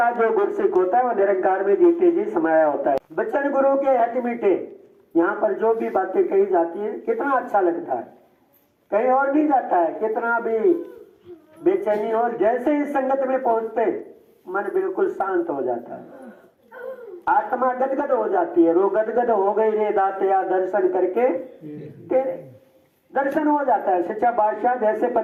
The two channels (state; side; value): identical; both; correlation 1.00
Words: जो गुरसिक होता है वो निरंकार में जीते जी समाया होता है। बच्चन गुरु के हट मीठे, यहाँ पर जो भी बातें कही जाती है कितना अच्छा लगता है, कहीं और नहीं जाता है। कितना भी बेचैनी हो, जैसे इस संगत में पहुंचते मन बिल्कुल शांत हो जाता है, आत्मा गदगद हो जाती है। रो गदगद हो गई रे दातया दर्शन करके तेरे, दर्शन हो जाता है। सच्चा बादशाह जैसे